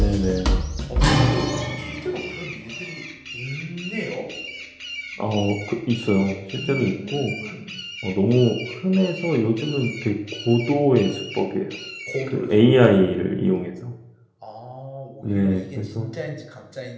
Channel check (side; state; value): both; identical; correlation 1.00